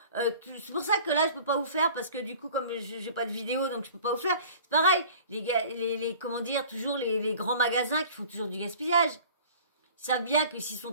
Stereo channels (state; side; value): inverted; both; correlation -0.46